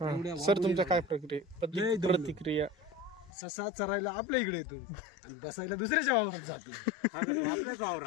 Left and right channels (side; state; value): right; drops out; at 3.3 s